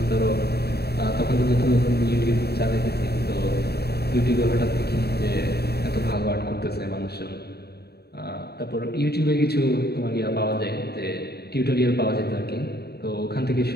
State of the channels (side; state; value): right; late; 0.47 ms